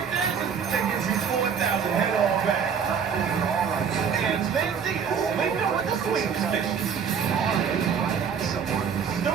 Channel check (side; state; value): left; quieter; 6.9 dB